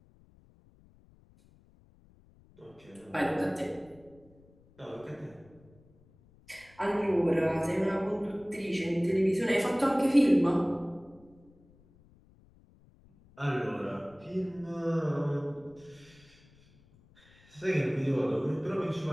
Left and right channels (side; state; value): left; noise; rumble, 28 dB below the sound